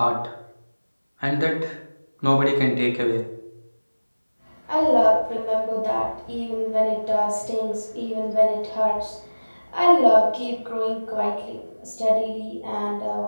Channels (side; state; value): both; inverted; correlation -1.00